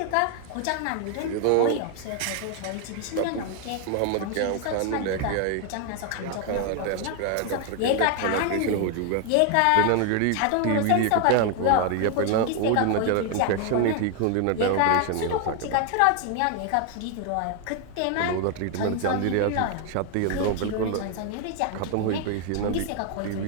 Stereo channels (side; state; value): both; different; correlation 0.01